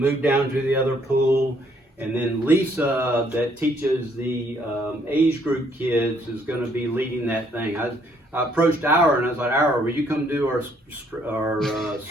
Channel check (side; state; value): both; normal; correlation 0.67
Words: down to the other pool, and then Lisa, that teaches the age group kids, is going to be leading that thing. I approached Our and I was like, Our, will you come do our